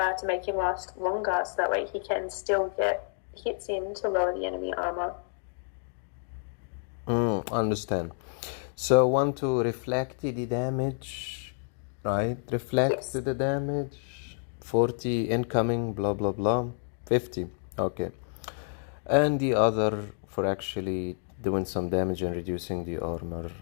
make him last longer, so that way he can still get hits in to lower the enemy armor. Understand. So want to reflect the damage, right? Reflect the damage. 40 incoming, blah, blah, blah. 50. Okay. And the other for actually doing some damage and reducing the armor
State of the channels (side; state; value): right; silent; 58 dB below the other